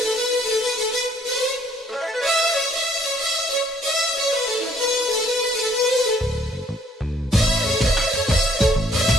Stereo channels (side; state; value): both; normal; correlation 0.64